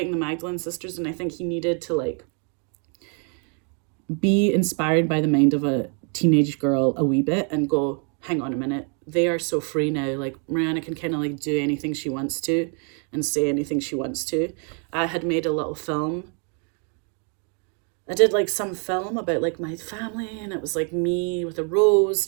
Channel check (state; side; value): quieter; left; 39.7 dB